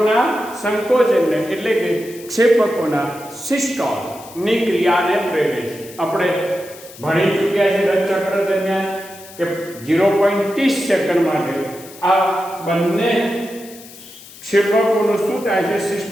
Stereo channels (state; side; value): noise; left; hiss, 19 dB below the sound